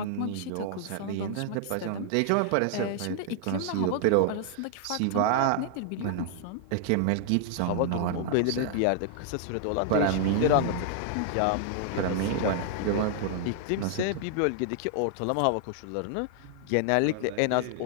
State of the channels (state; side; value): different; both; correlation -0.01